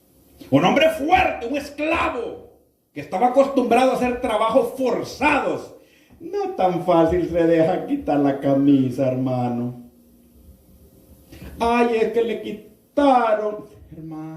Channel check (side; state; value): both; identical; correlation 1.00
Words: un hombre fuerte, un esclavo que estaba acostumbrado a hacer trabajos forzados. No tan fácil se deja quitar la camisa, hermano. Ay, es que le quitaron.